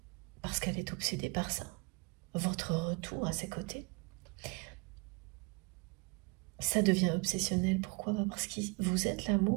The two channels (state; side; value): quieter; left; 29.7 dB